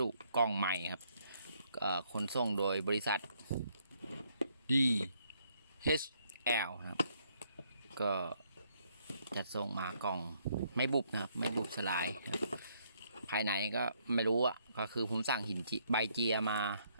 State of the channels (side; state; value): both; inverted; correlation -0.70